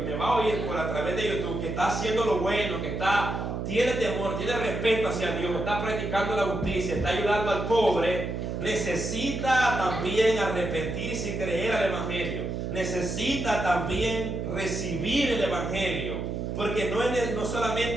me va a oír por a través de YouTube que está haciendo lo bueno, que tiene temor, tiene respeto hacia Dios, está practicando la justicia, está ayudando al pobre, necesita también arrepentirse y creer al evangelio. Necesita también recibir el evangelio. Porque no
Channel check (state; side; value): noise; right; hum, 3 dB below the sound